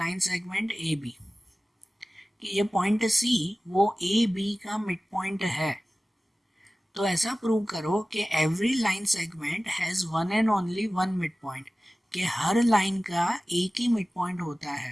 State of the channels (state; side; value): normal; both; correlation 0.97